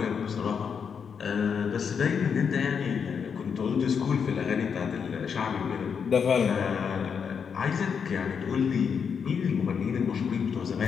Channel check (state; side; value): quieter; right; 6.6 dB